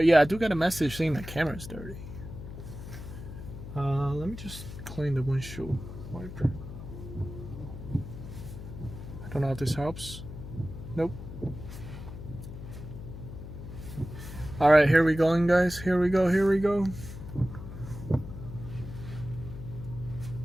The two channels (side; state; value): left; noise; hum, 11 dB below the sound